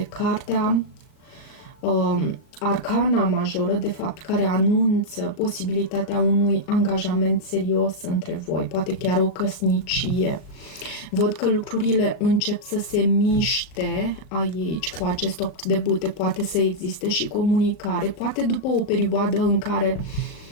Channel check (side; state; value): right; late; 38 ms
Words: cartea, arcana majoră, de fapt, care anunță posibilitatea unui angajament serios între voi, poate chiar o căsnicie. Văd că lucrurile încep să se miște aici cu acest 8 de bâte, poate să existe și comunicare, poate după o perioadă în care